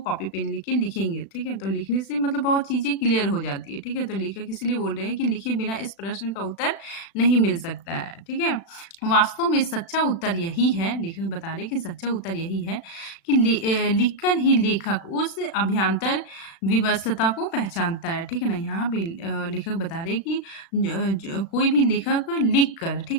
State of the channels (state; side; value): late; right; 36 ms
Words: पेन लेके लिखेंगे। ठीक है, तो लिखने से मतलब बहुत चीजें क्लियर हो जाती है। ठीक है, तो लेखक इसलिए बोल रहे हैं कि लिखे बिना इस प्रश्न का उत्तर नहीं मिल सकता है। ठीक है, वास्तव में सच्चा उत्तर यही है, लेखक बता रहे हैं कि सच्चा उत्तर यही है कि लिखकर ही लेखक उस अभ्यांतर विवशता को पहचानता है। ठीक है ना, यहाँ पे लेखक बता रहे हैं कि कोई भी लेखक लिख कर, ठीक